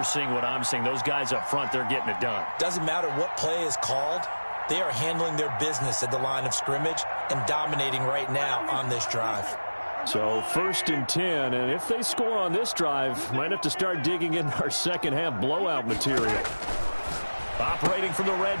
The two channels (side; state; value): both; inverted; correlation -1.00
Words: seeing what I'm seeing. Those guys up front, they're getting it done. Doesn't matter what play is called. They are handling their business at the line of scrimmage and dominating right now on this drive. So 1st and 10, and if they score on this drive, might have to start digging in our second half blowout material. Operating from the